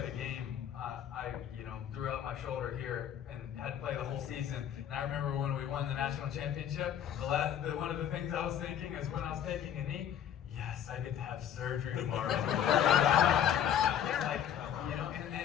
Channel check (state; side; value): quieter; right; 9.6 dB